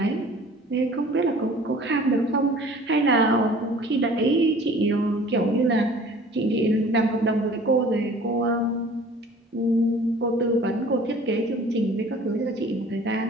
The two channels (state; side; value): normal; both; correlation 0.48